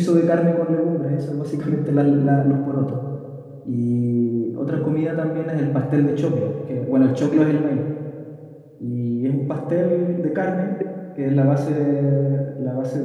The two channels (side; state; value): both; identical; correlation 1.00